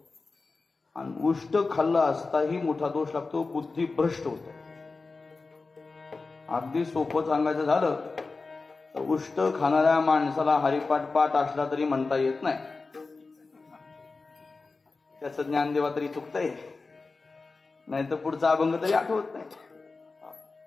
आणि उष्ट खाल्ला असताही मोठा दोष लागतो, बुद्धी भ्रष्ट होते. अगदी सोपं सांगायचं झालं तर उष्ट खाणाऱ्या माणसाला हरिपाठ पाठ असला तरी म्हणता येत नाही. त्याचं ज्ञानदेवा तरी चुकतंय, नाही तर पुढचा अभंग तरी आठवत नाही.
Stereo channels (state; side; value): quieter; right; 3.9 dB